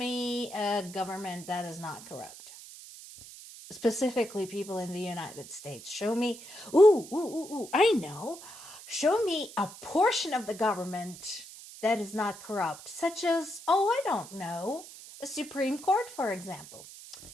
a government that is not corrupt. Specifically, people in the United States. Show me, I know. Show me a portion of the government that is not corrupt, such as, I don't know, a Supreme Court, for example.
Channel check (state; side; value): noise; right; hiss, 16 dB below the sound